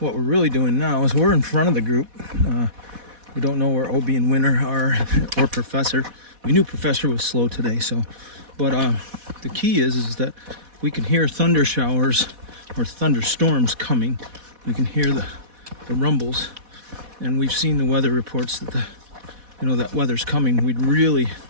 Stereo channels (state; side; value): late; left; 4.1 ms